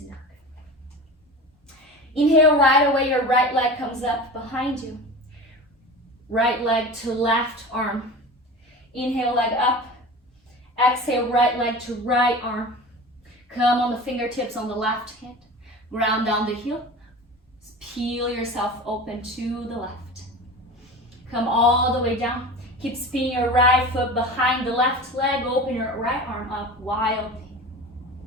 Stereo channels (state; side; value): normal; both; correlation 0.33